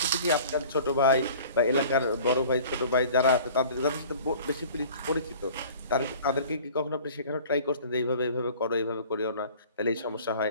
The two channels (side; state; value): both; inverted; correlation -0.46